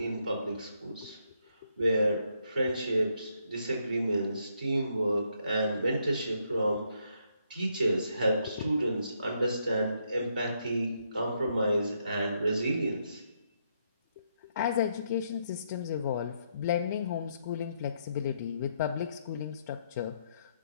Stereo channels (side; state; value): both; inverted; correlation -0.76